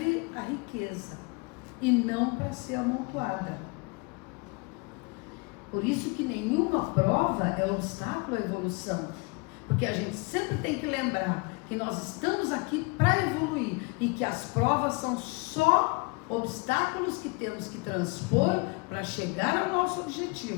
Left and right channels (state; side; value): quieter; right; 28.7 dB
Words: a riqueza e não para ser amontoada. Por isso que nenhuma prova é obstáculo à evolução, porque a gente sempre tem que lembrar que nós estamos aqui para evoluir e que as provas são só obstáculos que temos que transpor para chegar ao nosso